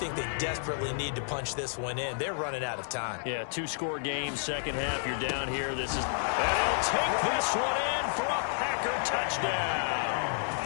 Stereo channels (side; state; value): right; silent; digital silence